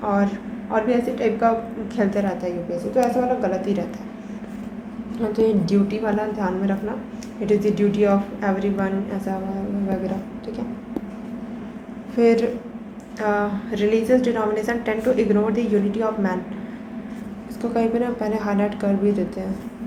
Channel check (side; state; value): both; identical; correlation 1.00